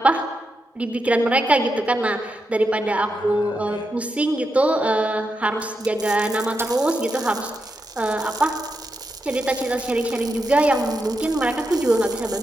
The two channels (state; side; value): normal; both; correlation 0.86